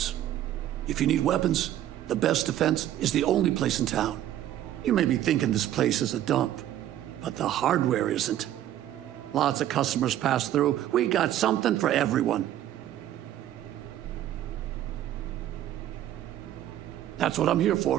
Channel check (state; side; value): quieter; left; 12.3 dB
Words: If you need weapons, the best defense is the only place in town. You may be thinking this place is a dump, but the hardware isn't. Lots of customers pass through. We got something for everyone. That's what I'm here